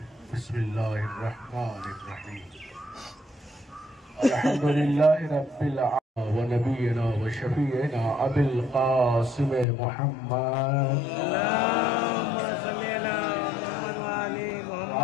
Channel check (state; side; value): drops out; right; at 9.7 s